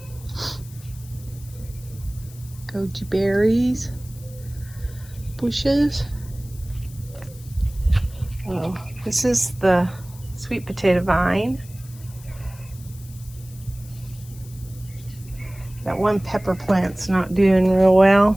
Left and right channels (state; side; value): noise; left; hiss, 21 dB below the sound